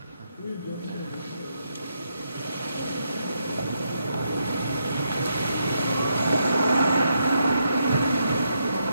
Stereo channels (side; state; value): both; inverted; correlation -0.80